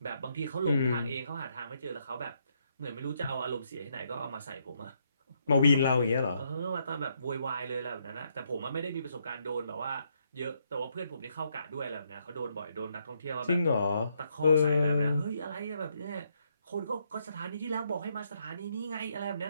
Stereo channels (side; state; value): both; inverted; correlation -0.75